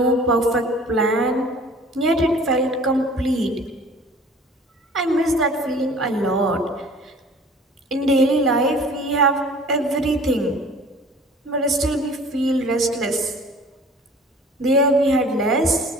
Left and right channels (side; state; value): both; normal; correlation 0.48